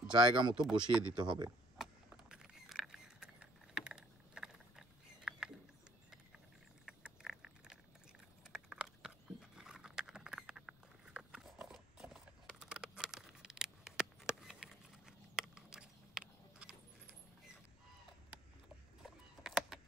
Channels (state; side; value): noise; left; rumble, 27 dB below the sound